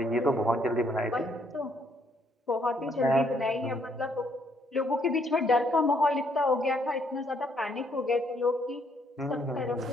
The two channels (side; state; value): both; normal; correlation 0.70